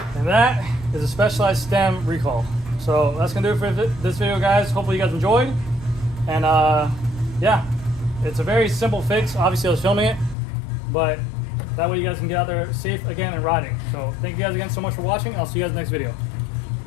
that is a specialized stem recall. So that's gonna do it for this video, guys. Hopefully you guys enjoyed. And yeah, it's a very simple fix. Obviously I was filming it, but that way you guys can get out there safe again and riding. So thank you guys again so much for watching. I'll see you guys in the next video.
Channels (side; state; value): right; drops out; at 10.4 s